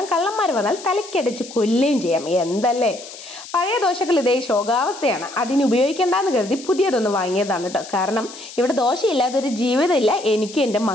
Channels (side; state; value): left; noise; hiss, 15 dB below the sound